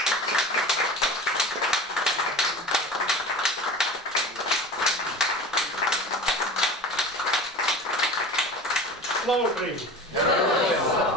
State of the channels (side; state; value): both; normal; correlation 0.36